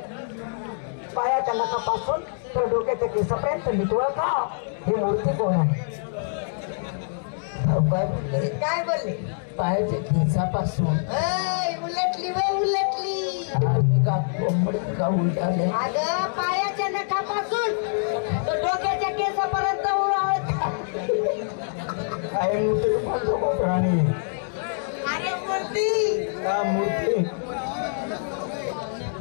पायाच्या नखापासून तर डोक्याच्या केसापर्यंत नीट ओळखा. ही मूर्ती कोण आहे? काय बोलले? काय बोलले? पायाच्या केसापासून उलटली वे उलटली. आणि का कोंबडी का उलटाले? अगं पायाच्या नखापासून तर डोक्याच्या केसापर्यंत ओळखा. काय मूर्ती म्हणतो कोपराणी? अरे मूर्ती. हा मूर्ती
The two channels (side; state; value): right; silent; digital silence